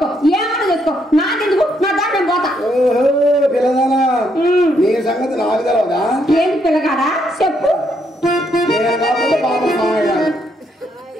ఏమైనా చేసుకో, నాకెందుకు? నా దాన్ని నేను పోతా. ఓహో పిల్లదానా, నీ సంగతి నాకు తెలవదా? ఏంటి పిల్లగాడా చెప్పు. నేను కాకపోతే బాబా మామయ్య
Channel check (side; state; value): both; normal; correlation 0.74